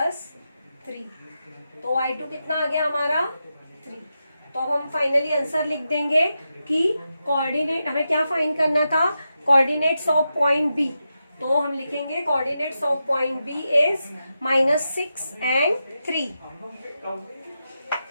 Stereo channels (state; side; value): inverted; both; correlation -0.88